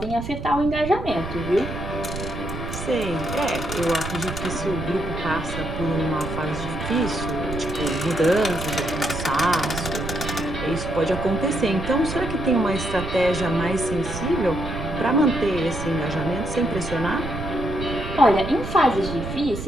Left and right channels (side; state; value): right; noise; rumble, 7 dB below the sound